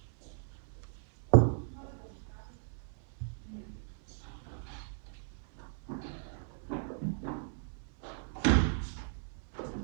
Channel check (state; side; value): silent; left; 54 dB below the other